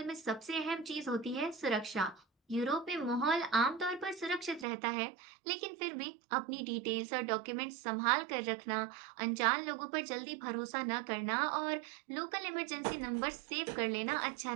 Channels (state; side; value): drops out; left; at 4.7 s